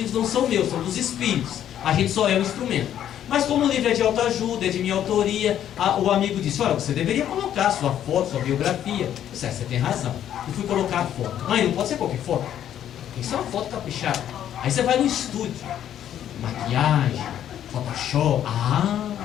não são meus, são dos espíritos. A gente só é um instrumento. Mas como o livro é de autoajuda, é de minha autoria, o amigo disse, olha, você deveria colocar a sua foto, sua biografia. Eu disse, você tem razão. Eu fui colocar a foto. Mãe, não pode ser qualquer foto. Tem que ser uma foto caprichada. Aí você vai no estúdio. Maquiagem, Photoshop.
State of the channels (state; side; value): quieter; right; 10.6 dB